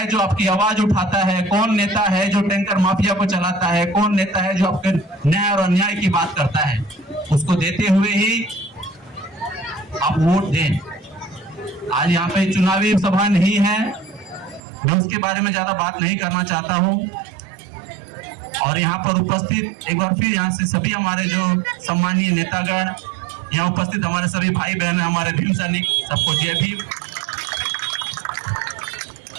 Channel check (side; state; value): left; drops out; at 14.6 s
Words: जो आपकी आवाज उठाता है, कौन नेता है जो टैंकर माफिया को चलाता है, कौन नेता है जो आपके न्याय और अन्याय की बात करता है। उसको देते हुए ही आप वोट दें। आज यहाँ पे चुनावी सभा नहीं है, मैं उसके बारे में ज्यादा बात नहीं करना चाहता हूँ। और यहाँ पर उपस्थित एक बार फिर यहाँ से सभी हमारे जो सम्मानीय नेतागण, यहाँ उपस्थित हमारे सभी भाई बहन, हमारे भीम सैनिक, सबको जय भीम।